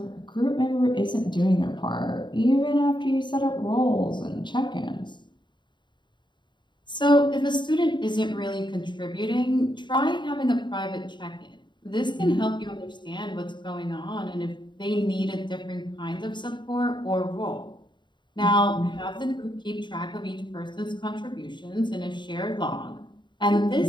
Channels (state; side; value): late; right; 0.22 ms